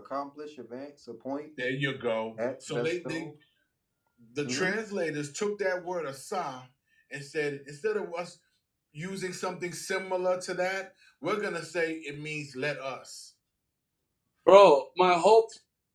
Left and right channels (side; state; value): both; identical; correlation 1.00